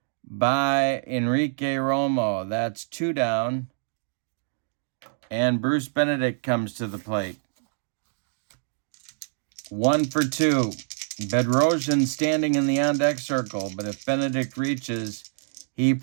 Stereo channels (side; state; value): left; silent; digital silence